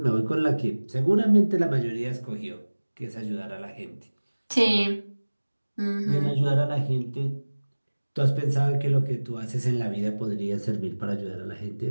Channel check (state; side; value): inverted; both; correlation -1.00